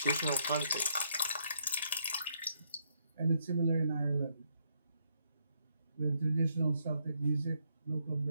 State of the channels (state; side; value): inverted; both; correlation -0.74